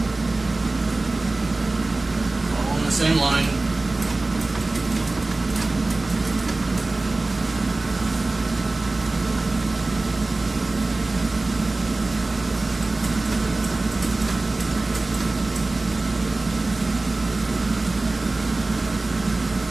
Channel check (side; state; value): left; quieter; 3.1 dB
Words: all in the same line.